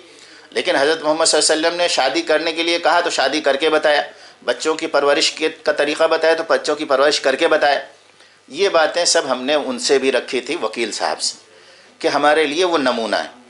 لیکن حضرت محمد صلی اللہ علیہ وسلم نے شادی کرنے کے لیے کہا تو شادی کر کے بتایا، بچوں کی پرورش کا طریقہ بتایا تو بچوں کی پرورش کر کے بتایا۔ یہ باتیں سب ہم نے ان سے بھی رکھی تھی، وکیل صاحب سے، کہ ہمارے لیے وہ نمونہ ہے۔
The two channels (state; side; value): identical; both; correlation 1.00